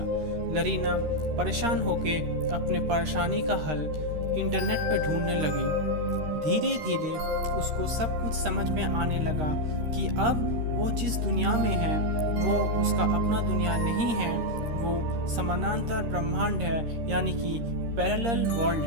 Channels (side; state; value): left; late; 13 ms